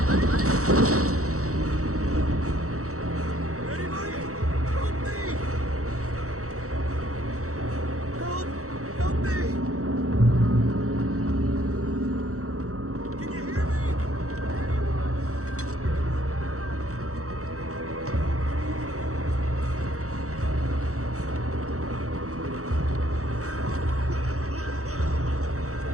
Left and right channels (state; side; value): late; left; 0.65 ms